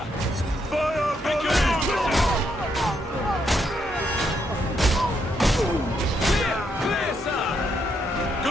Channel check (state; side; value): normal; both; correlation 0.77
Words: Fire! Make your own! Clear, sir!